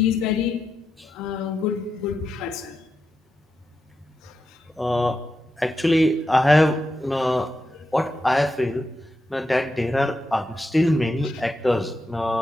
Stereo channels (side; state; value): both; normal; correlation 0.87